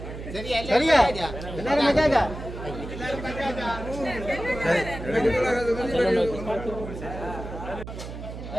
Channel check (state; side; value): noise; right; hum, 10 dB below the sound